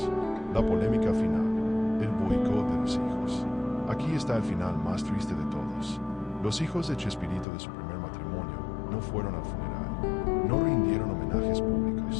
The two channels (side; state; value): right; drops out; at 7.5 s